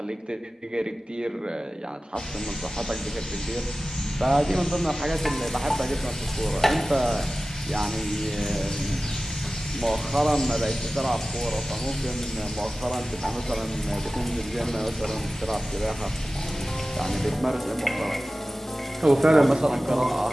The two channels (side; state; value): both; normal; correlation 0.96